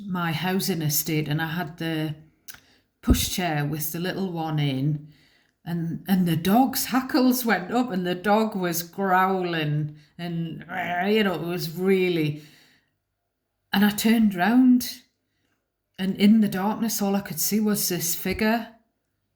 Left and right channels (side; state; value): both; identical; correlation 1.00